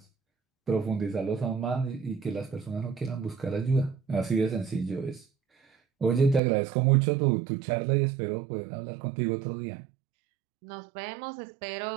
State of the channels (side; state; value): left; drops out; at 6.4 s